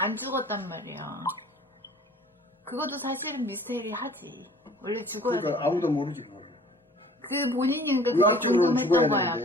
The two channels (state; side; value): normal; both; correlation 0.49